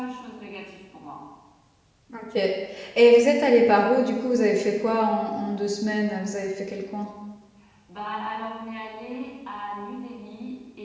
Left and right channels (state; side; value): identical; both; correlation 1.00